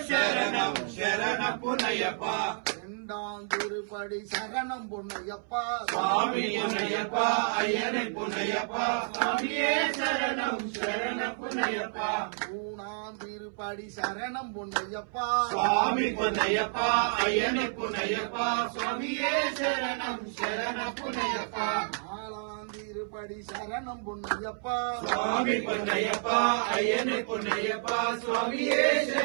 சரணம் சரண பொன்னையப்பா இரண்டாம் திருப்படி சரணம் பொன்னையப்பா சுவாமி பொன்னையப்பா ஐயனை பொன்னையப்பா சாமியே சரணம் சரண பொன்னையப்பா மூணாம் திருப்படி சரணம் பொன்னையப்பா சுவாமி பொன்னையப்பா ஐயனை பொன்னையப்பா சுவாமியே சரணம் சரண பொன்னையப்பா நாலாம் திருப்படி சரணம் பொன்னையப்பா சுவாமி பொன்னையப்பா ஐயனை பொன்னையப்பா சுவாமியே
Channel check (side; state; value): left; silent; 58 dB below the other